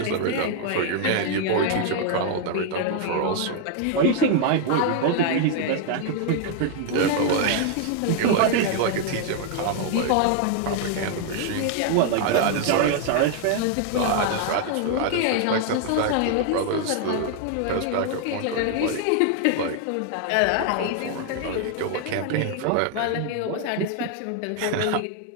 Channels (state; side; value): different; both; correlation 0.00